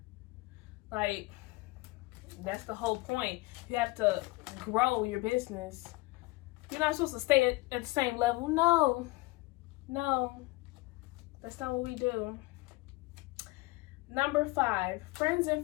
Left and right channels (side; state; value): right; quieter; 22.2 dB